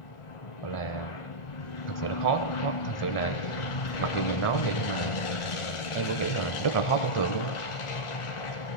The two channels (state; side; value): late; right; 1.4 ms